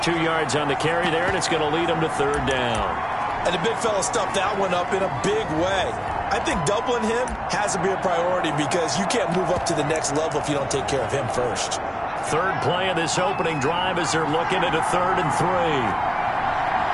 2 yards on the carry there, and it's going to lead him to 3rd down. And the big fella stuffed that one up in a big way. I think doubling him has to be a priority because you can't move up to the next level if you don't take care of him first. Third play of this opening drive as they're looking at a 3rd and 3.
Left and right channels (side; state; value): both; identical; correlation 1.00